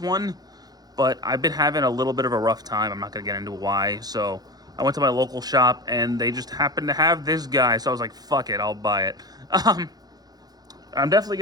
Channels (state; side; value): late; left; 0.19 ms